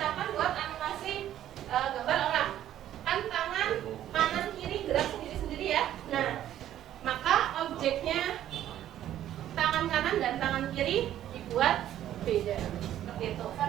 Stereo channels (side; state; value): left; quieter; 11.9 dB